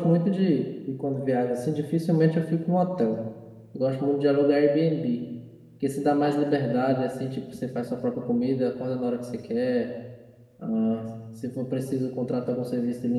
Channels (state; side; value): identical; both; correlation 1.00